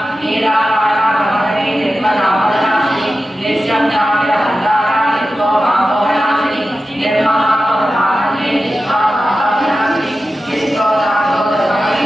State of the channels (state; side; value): normal; both; correlation 0.93